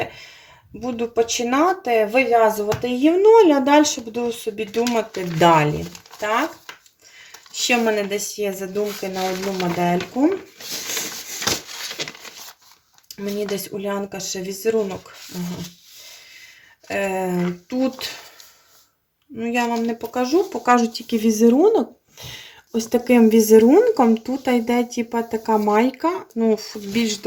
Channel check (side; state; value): both; identical; correlation 1.00